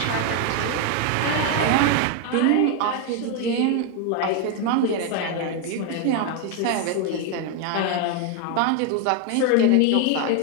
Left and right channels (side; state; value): both; different; correlation 0.01